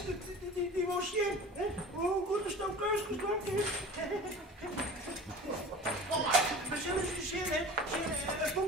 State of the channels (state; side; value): normal; both; correlation 0.38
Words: die was je. Hoe goed is dat keus geslacht is? Kom maar. We zullen ze zien, hè? Een